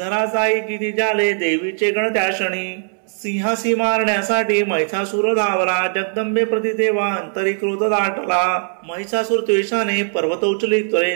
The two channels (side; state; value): left; silent; 66 dB below the other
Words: किती झाले देवीचे गण त्या क्षणी. सिंहासी मारण्यासाठी महिषासुर धावला जगदंबे प्रति तेव्हा अंतरी क्रोध दाटला. महिषासुर द्वेषाने पर्वत उचली